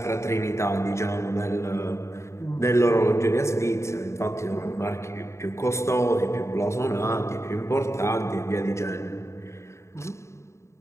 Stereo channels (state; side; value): late; right; 0.14 ms